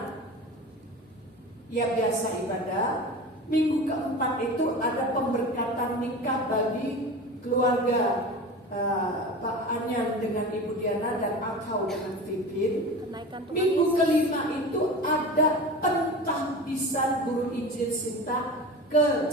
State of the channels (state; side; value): normal; both; correlation 0.32